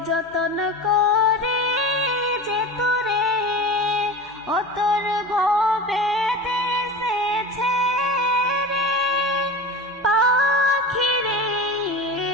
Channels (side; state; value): both; normal; correlation 0.30